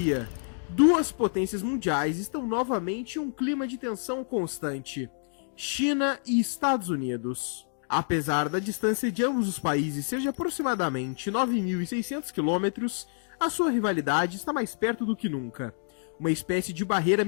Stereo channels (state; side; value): silent; right; digital silence